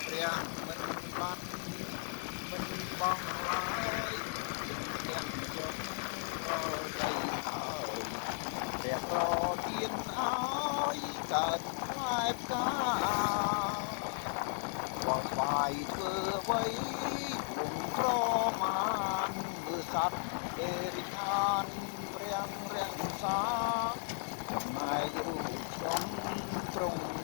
ព្រះមិនបាត់មិនបងឡើយទាំងជុំក៏ដីហើយព្រះប្រទានឲ្យកើតផ្លែផ្កាបងស្វាយធ្វើអ្វីវងក្រមានមើលសត្វអេរិខានព្រះរាំងសាចំណែករូបខ្ញុំទ្រង់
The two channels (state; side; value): silent; right; 54 dB below the other